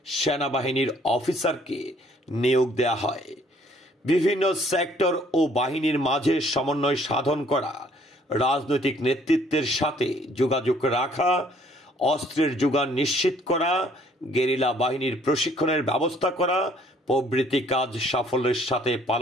সেনাবাহিনীর অফিসারকে নিয়োগ দেয়া হয়। বিভিন্ন সেক্টর ও বাহিনীর মাঝে সমন্বয় সাধন করা, রাজনৈতিক নেতৃত্বের সাথে যোগাযোগ রাখা, অস্ত্রের যোগান নিশ্চিত করা, গেরিলা বাহিনীর প্রশিক্ষণের ব্যবস্থা করা প্রভৃতি কাজ সাফল্যের সাথে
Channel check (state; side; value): normal; both; correlation 0.61